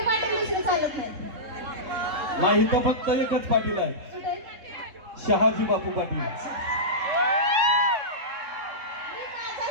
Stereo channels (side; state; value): left; late; 3.7 ms